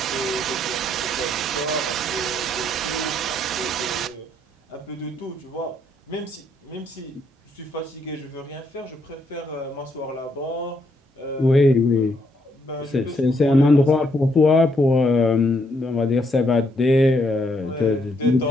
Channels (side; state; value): both; normal; correlation 0.73